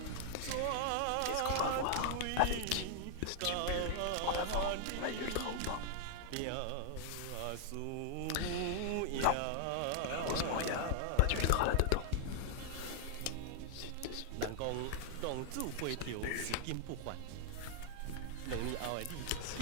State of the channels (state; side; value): different; both; correlation -0.01